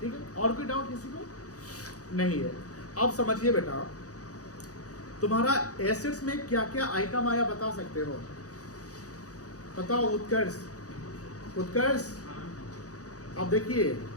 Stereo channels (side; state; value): right; late; 0.67 ms